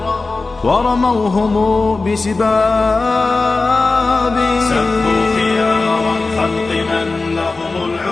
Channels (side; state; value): right; quieter; 3.7 dB